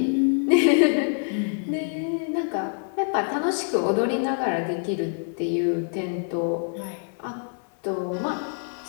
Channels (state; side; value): silent; right; 60 dB below the other